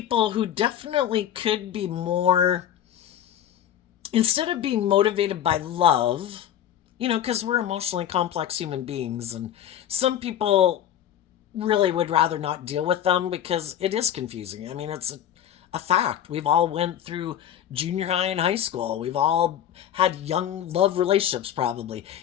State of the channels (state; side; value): quieter; right; 10.5 dB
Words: who definitely could be more, instead of being motivated by love, because we're emotionally complex human beings, and some people really would rather not deal with them because it is confusing. I mean, it's a fact. We've all went through junior high and high school. We've all had young love relationships probably.